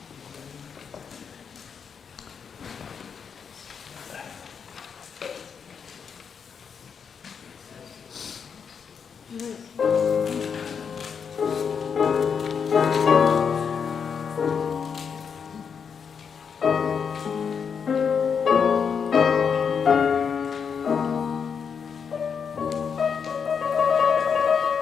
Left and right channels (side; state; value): right; quieter; 6.6 dB